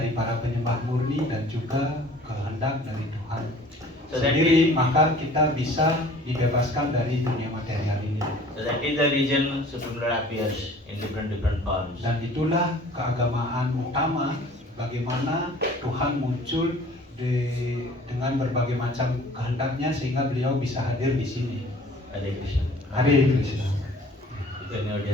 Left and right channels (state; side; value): normal; both; correlation 0.49